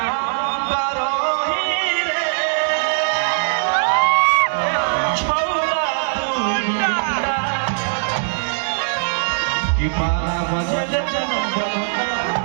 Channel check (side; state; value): left; silent; 60 dB below the other